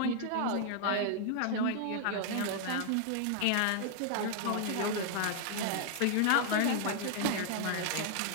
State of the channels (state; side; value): different; both; correlation 0.00